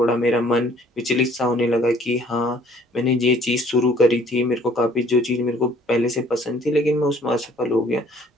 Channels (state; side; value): normal; both; correlation 0.58